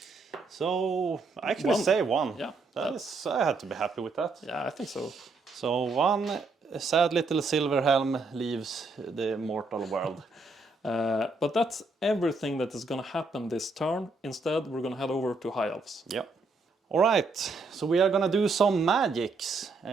So I actually 1. say 1. Yeah. I had to be happy with that. Yeah, I think so. So 1 sad little silver helm leaves the mortal world. But that's everything that is going to happen this turn. Instead, we're going to head over to High Elves. Yep. All right, so we are going to do some magics.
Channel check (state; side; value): quieter; left; 3.7 dB